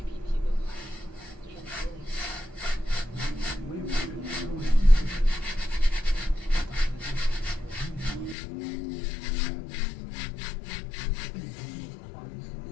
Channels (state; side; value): drops out; right; at 8.3 s